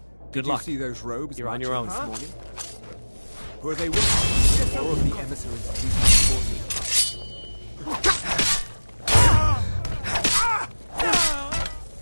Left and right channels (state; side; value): inverted; both; correlation -1.00